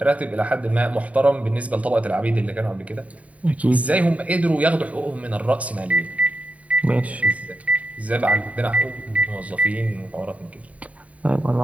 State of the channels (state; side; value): late; left; 0.068 ms